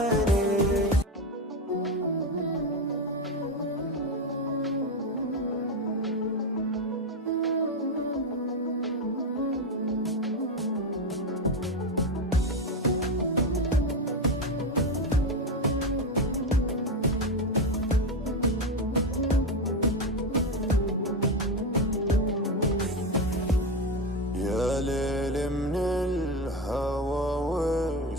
ليل من الهوى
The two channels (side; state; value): both; normal; correlation 0.14